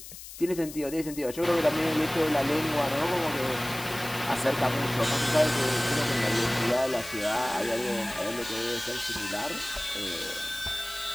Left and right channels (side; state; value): left; noise; hiss, 13 dB below the sound